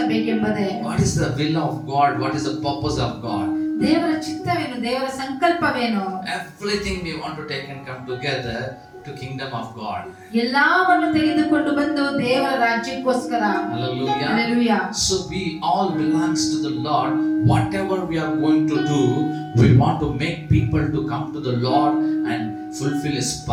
What is the will of God? What is the purpose of God? ದೇವರ ಚಿತ್ತವೇನು, ದೇವರ ಸಂಕಲ್ಪವೇನು? Everything we want to take and come together to kingdom of God. ಎಲ್ಲವನ್ನು ತೆಗೆದುಕೊಂಡು ಬಂದು ದೇವರ ರಾಜ್ಯಕ್ಕೋಸ್ಕರ. Hallelujah. Hallelujah. So we all belongs to the Lord. Whatever we are going to do, we want to make people to come to the Lord and fulfill His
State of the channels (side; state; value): both; identical; correlation 1.00